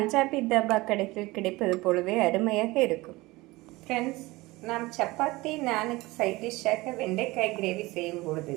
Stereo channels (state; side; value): quieter; left; 21.0 dB